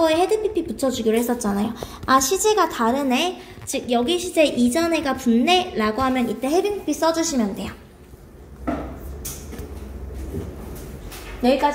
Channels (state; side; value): identical; both; correlation 1.00